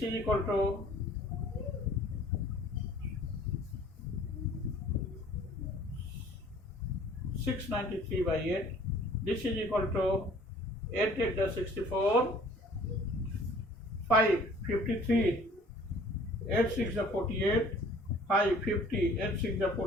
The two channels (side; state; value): both; normal; correlation 0.53